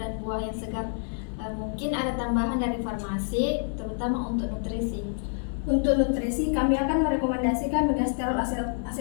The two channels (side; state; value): right; silent; 60 dB below the other